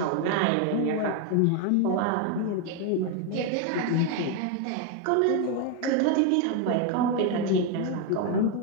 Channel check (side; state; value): both; different; correlation 0.01